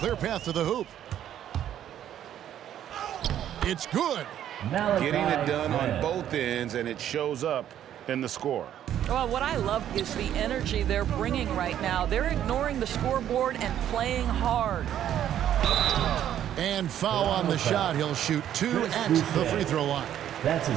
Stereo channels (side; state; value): left; quieter; 10.8 dB